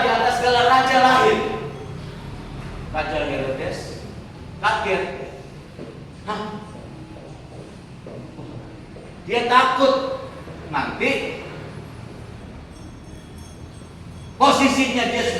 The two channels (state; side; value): identical; both; correlation 1.00